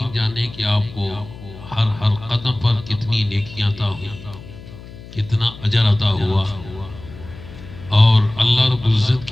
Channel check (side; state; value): left; noise; hum, 16 dB below the sound